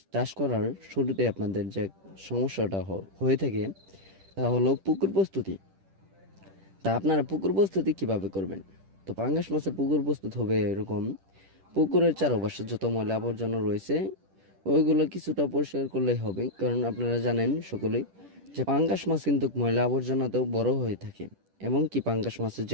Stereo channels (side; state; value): left; late; 10 ms